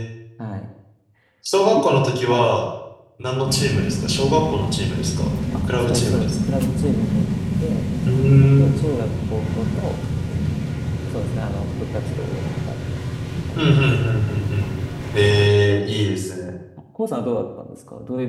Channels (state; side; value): identical; both; correlation 1.00